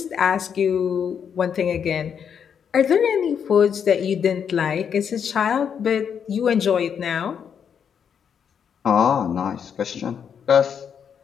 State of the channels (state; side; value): quieter; right; 7.6 dB